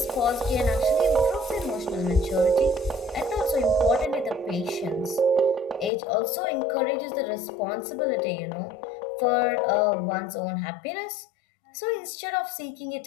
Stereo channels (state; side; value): drops out; right; at 5.9 s